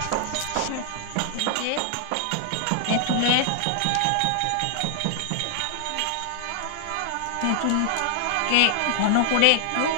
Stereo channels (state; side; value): different; both; correlation -0.01